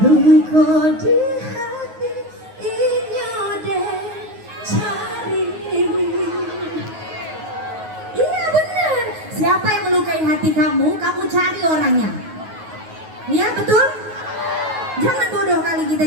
di hati inyo deh cari. Iya benar. Siapa yang melukai hati kamu, kamu cari orangnya. Iya betul? Jangan bodoh kali kita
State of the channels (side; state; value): left; late; 9.4 ms